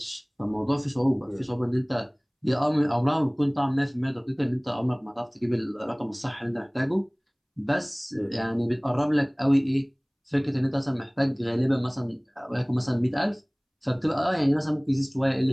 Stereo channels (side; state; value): both; identical; correlation 1.00